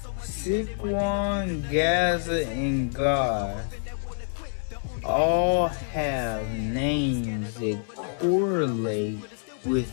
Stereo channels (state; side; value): silent; right; 60 dB below the other